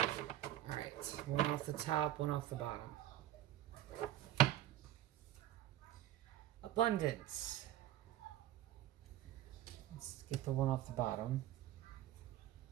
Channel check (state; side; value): quieter; left; 13.4 dB